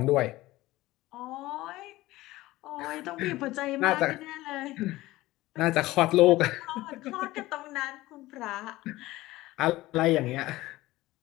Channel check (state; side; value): quieter; right; 17.9 dB